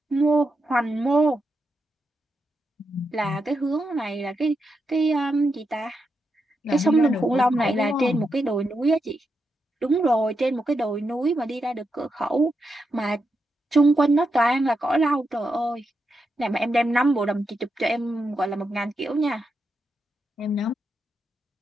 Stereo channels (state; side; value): normal; both; correlation 0.85